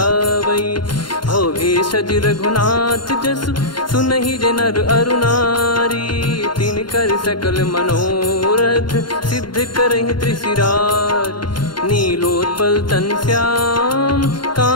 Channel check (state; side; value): late; right; 0.71 ms